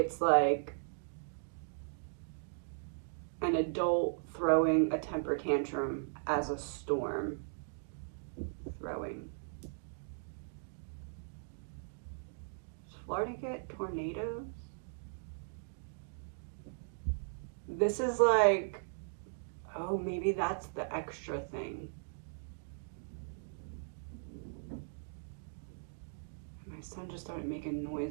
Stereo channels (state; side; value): silent; left; digital silence